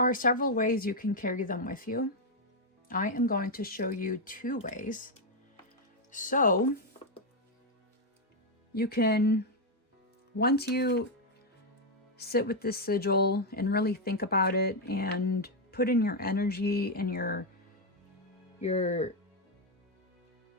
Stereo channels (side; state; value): both; normal; correlation 0.01